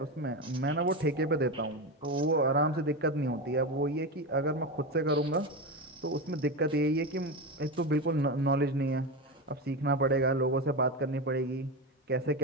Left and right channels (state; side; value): normal; both; correlation 0.18